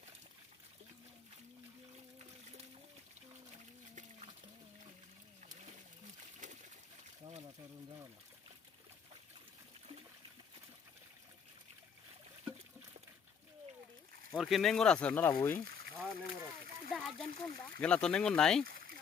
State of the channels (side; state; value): right; quieter; 6.7 dB